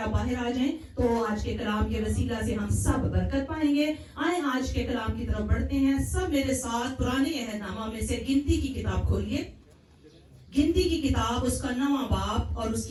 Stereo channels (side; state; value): both; identical; correlation 1.00